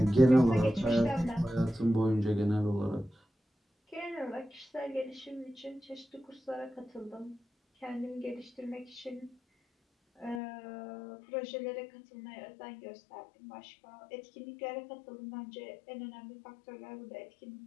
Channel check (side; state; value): right; drops out; at 10.4 s